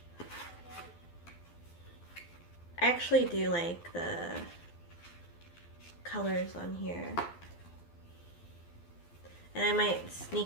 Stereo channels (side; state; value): right; late; 12 ms